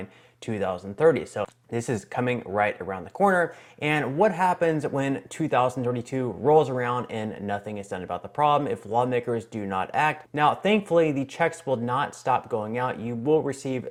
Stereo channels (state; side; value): identical; both; correlation 1.00